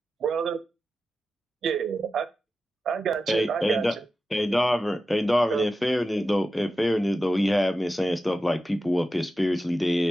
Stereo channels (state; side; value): normal; both; correlation 0.92